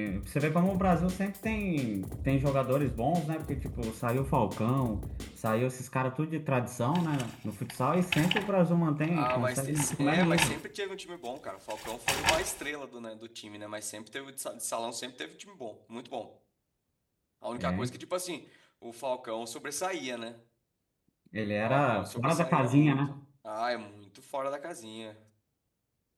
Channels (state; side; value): identical; both; correlation 1.00